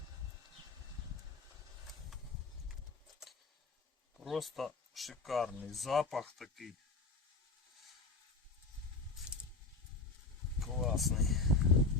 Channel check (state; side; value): quieter; right; 3.8 dB